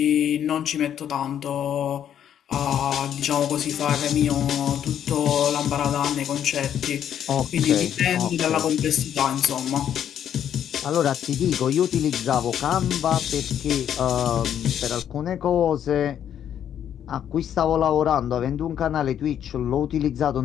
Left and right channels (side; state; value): right; quieter; 9.7 dB